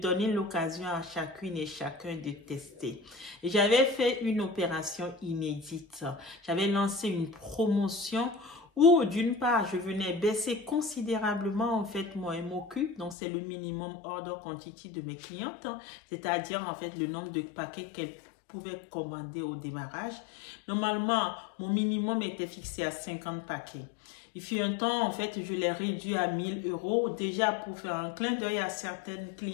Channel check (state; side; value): drops out; right; at 13.2 s